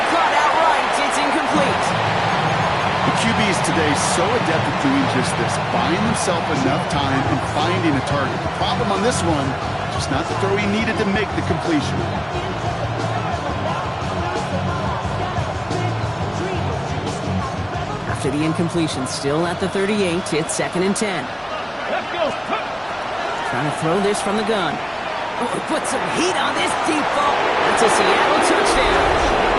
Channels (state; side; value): identical; both; correlation 1.00